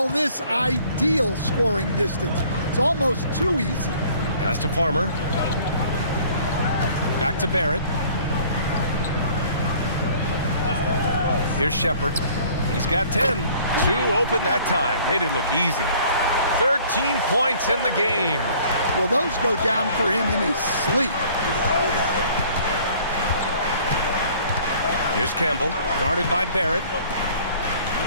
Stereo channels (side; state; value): both; inverted; correlation -0.54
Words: this ideal scoring distance. It's almost too easy. Pass to Farmer. Back to Barrett. Here's Shepard. He's got 10. 2 open that time. Made it look easy. 13 points in the game. Well, those go down for him in his sleep. Here's Campbell, guarded by Barrett.